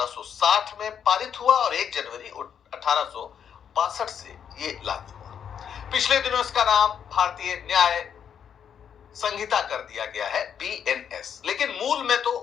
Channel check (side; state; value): right; quieter; 8.2 dB